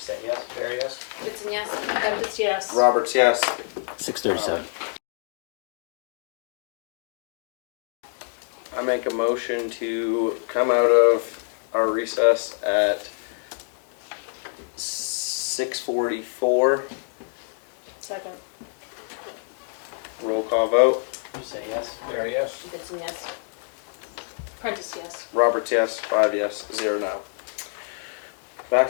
yes? Barry, yes. Goodson, yes. Prentice, yes. Roberts, yes. 6:37. I make a motion to come out of our recess at 6:44. Second. Roll call vote. You said yes? Barry, yes. Goodson, yes. Prentice, yes. Roberts, yes. 5 yes, 0 no. Back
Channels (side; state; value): right; silent; 60 dB below the other